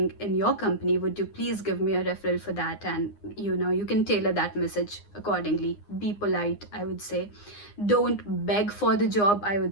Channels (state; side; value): late; right; 9.7 ms